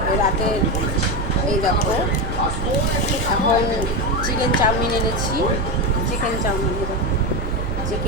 রাতের এই দেখো, এখন চিকেন চাউমিন এনেছি। চিকেন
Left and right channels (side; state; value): right; noise; hum, 6 dB below the sound